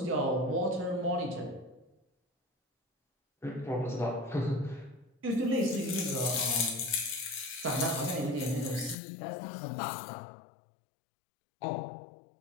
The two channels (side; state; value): right; drops out; at 9.0 s